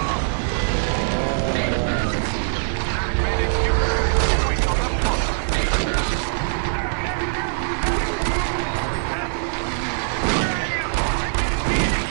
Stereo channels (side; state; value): left; silent; 59 dB below the other